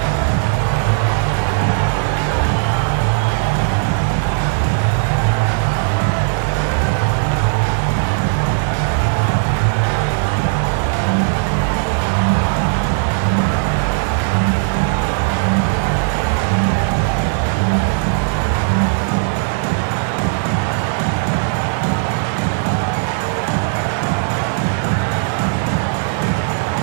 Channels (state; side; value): silent; left; 68 dB below the other